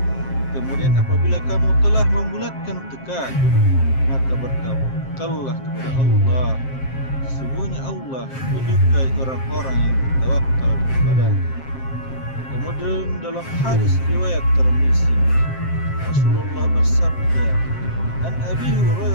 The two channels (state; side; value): late; right; 7.6 ms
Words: Kemudian apabila kamu telah membulatkan tekad, maka bertawakallah kepada Allah. Sesungguhnya Allah menyukai orang-orang yang bertawakal kepadanya. Kemudian dalam hadis riwayat Tirmizi, Rasulullah bersabda, An Abi